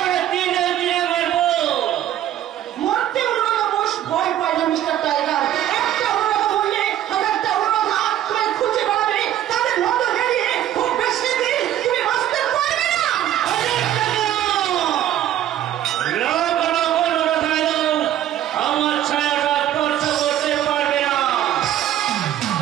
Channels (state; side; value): quieter; left; 11.9 dB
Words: দিনে দিনে মারবো। মরতে অনুরোধ বস ভয় পাই না মিস্টার টাইগার। একটা অনুরোধ বললে হাজারটা অনুরোধ তোমায় খুঁজে বেড়াবে। তাদের মতো হেরিয়ে খুব বেশি দিন তুমি বাঁচতে পারবে না। লোক লোক অনুরোধ হলো, আমার ছায়াটা স্পর্শ করতে পারবে না।